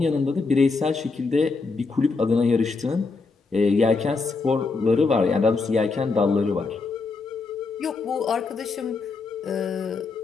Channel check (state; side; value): quieter; right; 4.2 dB